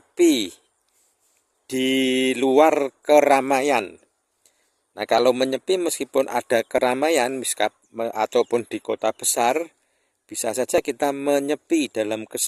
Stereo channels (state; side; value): identical; both; correlation 1.00